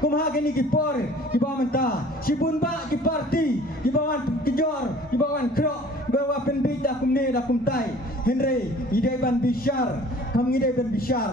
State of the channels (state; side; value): normal; both; correlation 0.50